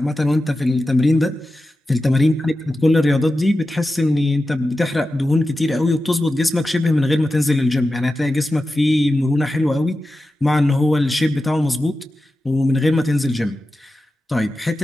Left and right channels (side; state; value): both; normal; correlation 0.92